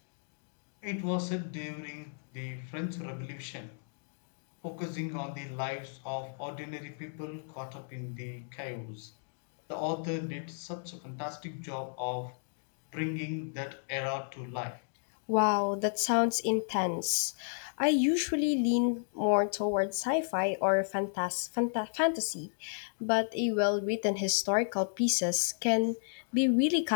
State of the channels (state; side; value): silent; right; digital silence